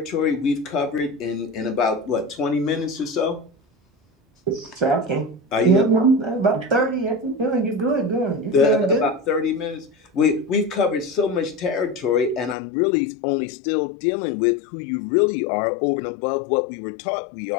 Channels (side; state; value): right; drops out; at 12.6 s